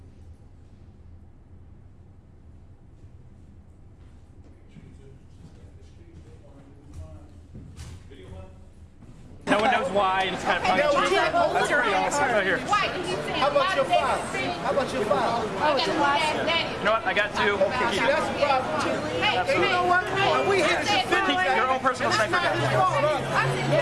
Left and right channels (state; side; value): identical; both; correlation 1.00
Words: No one knows why, and it's kind of funny. That's pretty awesome. Right here. How about your father? How about your father? You know what? I got two. See, that's the problem too. Hey, you know what? We here to Keep your own personal sniper